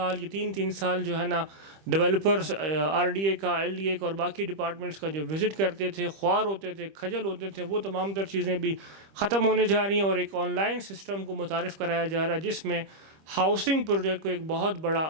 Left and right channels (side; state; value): left; late; 25 ms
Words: یا 3 سال جو ہے نا ڈیولپرز RDA کا, LDA کا اور باقی ڈپارٹمنٹس کا جو وزٹ کرتے تھے, خوار ہوتے تھے, کھجل ہوتے تھے, وہ تمام تر چیزیں بھی ختم ہونے جا رہی ہیں اور ایک آن لائن سسٹم کو متعارف کرایا جا رہا ہے جس میں ہاؤسنگ پروجیکٹ کو ایک بہت بڑا